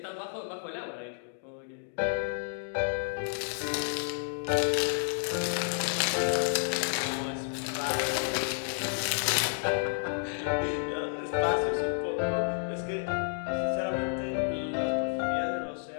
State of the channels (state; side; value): silent; right; digital silence